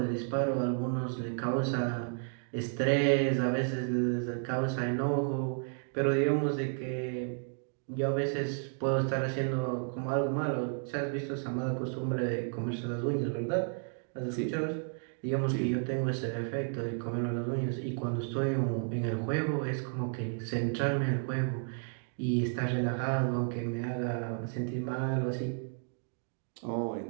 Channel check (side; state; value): left; silent; 56 dB below the other